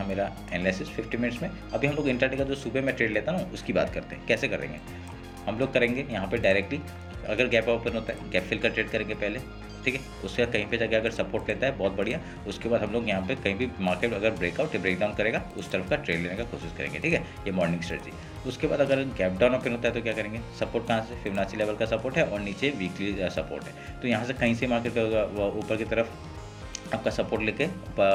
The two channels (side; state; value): both; identical; correlation 1.00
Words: मेरा एनालिसिस 50 मिनट्स में। अभी हम लोग इंट्राडे का जो सुबह में ट्रेड लेता हूँ उसकी बात करते हैं कैसे करेंगे। हम लोग करेंगे यहाँ पे डायरेक्टली, अगर गैप ओपन होता है गैप फिल का ट्रेड करेंगे पहले। ठीक है, उसके बाद कहीं पे जाके अगर सपोर्ट लेता है बहुत बढ़िया, उसके बाद हम लोग यहाँ पे कहीं भी मार्केट अगर ब्रेकआउट या ब्रेकडाउन करेगा उस तरफ का ट्रेड लेने का कोशिश करेंगे। ठीक है, ये मॉर्निंग स्ट्रेटजी। उसके बाद अगर गैप डाउन ओपन होता है तो क्या करेंगे, सपोर्ट कहाँ से, फिबोनाची लेवल का सपोर्ट है और नीचे वीकली सपोर्ट है, तो यहाँ से कहीं से मार्केट ऊपर की तरफ आपका सपोर्ट लेके